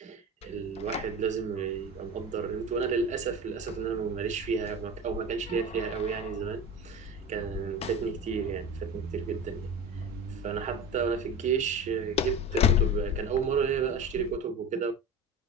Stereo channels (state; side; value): normal; both; correlation 0.31